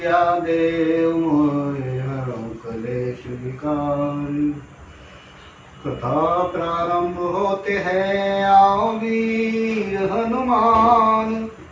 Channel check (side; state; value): both; identical; correlation 1.00